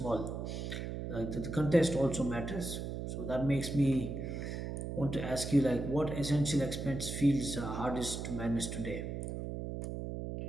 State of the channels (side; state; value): right; noise; hum, 5 dB below the sound